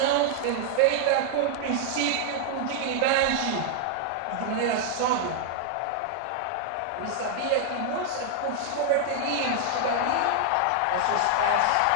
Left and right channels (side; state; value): both; different; correlation 0.00